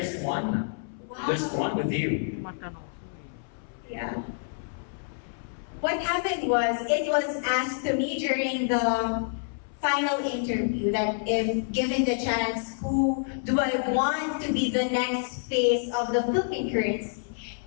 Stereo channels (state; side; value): silent; right; 59 dB below the other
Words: one. Wow. There's one with you. Yeah. What happened was, it was asked to me during the final interview that if given the chance, who do I want to be the next face of the Philippine currency?